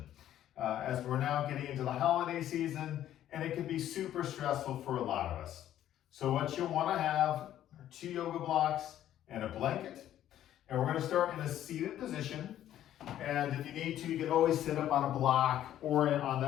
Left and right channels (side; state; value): right; quieter; 11.8 dB